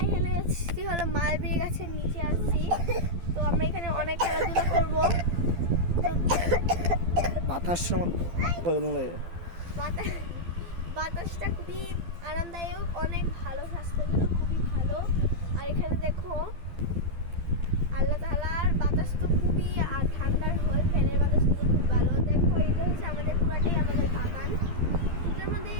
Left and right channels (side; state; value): left; late; 12 ms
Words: এখানে এসেছি হলো মালবেরি গাছের নিচে আসছি। তো আমরা এখানে অনেক খেলাধুলা করব। বাতাসটা খুবই আরামদায়ক, অনেক ভালো, স্বাস্থ্যের জন্য খুবই ভালো। আর এখানে দেখো আল্লাহ তাআলার বাতাস তো খুবই ঠান্ডার হয়, ফ্যানের বাতাস তো খুব ভালো। দেখো এটা হচ্ছে আমাদের পুরাটাই আমাদের বাগান। এটার মধ্যে